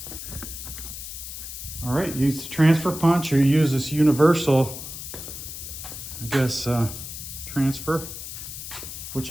All right, use the transfer punch or use this universal, I guess, transfer, which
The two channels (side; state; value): left; noise; hiss, 9 dB below the sound